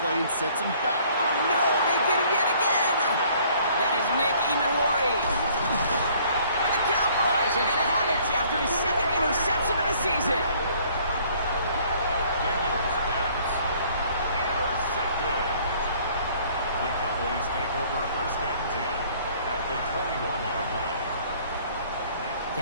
play and sets him back. Oh, no, they get him yet again. That is Nick Emanwari. And the Cowboys are going to have it after his 2nd interception of the season. Daniels pass. Intercepted. The Cowboys take over 1st and 10 at the 21-yard line.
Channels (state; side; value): inverted; both; correlation -0.58